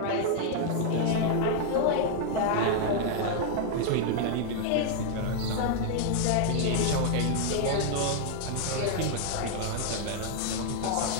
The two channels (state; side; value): different; both; correlation 0.00